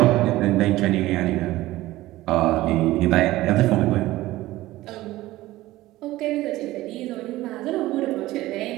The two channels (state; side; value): quieter; left; 17.0 dB